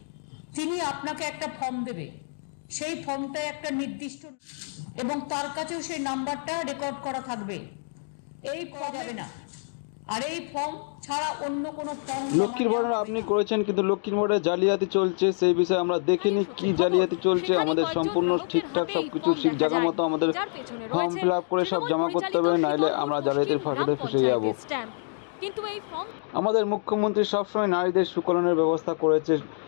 তিনি আপনাকে একটা ফর্ম দেবে, সেই ফর্মটায় একটা নির্দিষ্ট এবং তার কাছেও সেই নাম্বারটা রেকর্ড করা থাকবে। এই পাওয়া যাবে না, আর এই ফর্ম ছাড়া অন্য কোনো ফর্ম। লক্ষ্মীর ভান্ডার আপনি করেছেন, কিন্তু লক্ষ্মীর ভান্ডারে জালিয়াতি চলছে, সেই বিষয়ে আমরা দেখিনি কি জালিয়াতি চলছে। আমাদের সম্পূর্ণ ঠিকঠাক সবকিছু ঠিক জায়গা মতো আমাদের ফর্ম ফিল আপ করে সব জমা করতে হবে, নাইলে আমরা জালিয়াতির ফাঁদে ফেসে যাব। কিন্তু এই ফর্ম আমাদের মুখ্যমন্ত্রী সবসময় নারীদের সুকলনের ব্যবস্থা করেছে,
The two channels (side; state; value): right; silent; digital silence